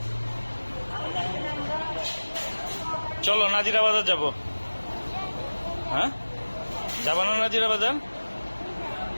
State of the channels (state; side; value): inverted; both; correlation -1.00